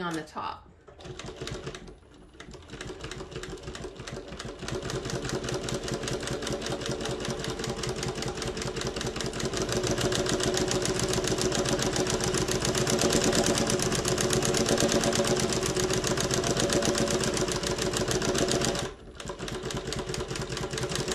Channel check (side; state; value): both; identical; correlation 1.00